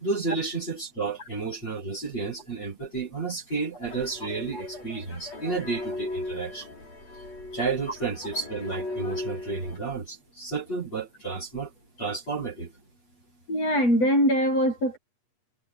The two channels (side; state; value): right; late; 8.4 ms